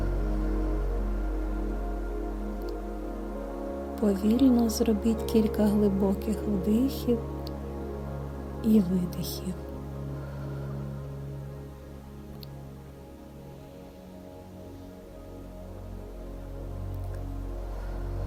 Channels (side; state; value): both; identical; correlation 1.00